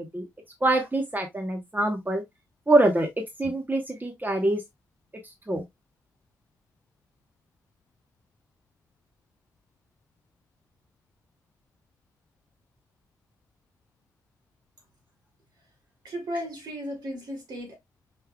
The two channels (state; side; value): normal; both; correlation 0.78